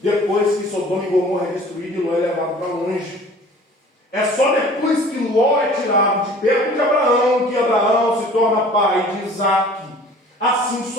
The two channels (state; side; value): normal; both; correlation 0.47